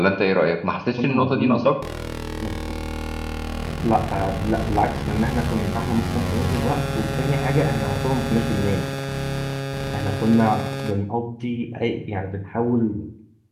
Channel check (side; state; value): both; identical; correlation 1.00